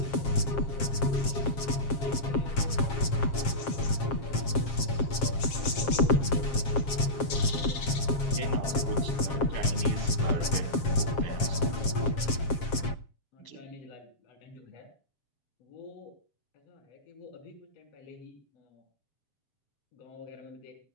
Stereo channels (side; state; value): right; late; 7.5 ms